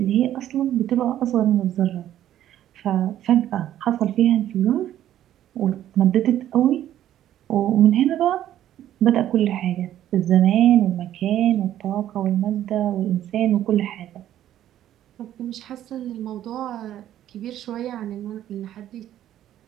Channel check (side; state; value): left; quieter; 12.0 dB